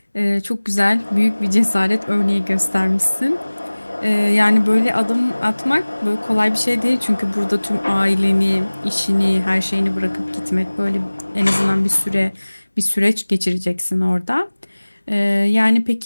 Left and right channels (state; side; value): inverted; both; correlation -1.00